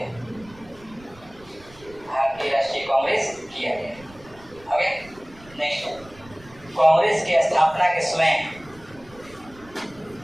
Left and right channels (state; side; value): noise; right; rumble, 23 dB below the sound